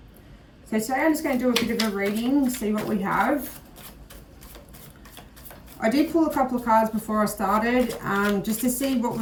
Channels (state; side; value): identical; both; correlation 1.00